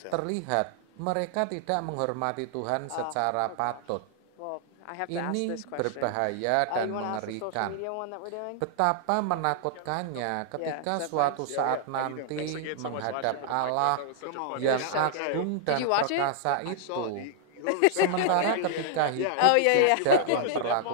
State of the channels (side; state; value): both; different; correlation -0.01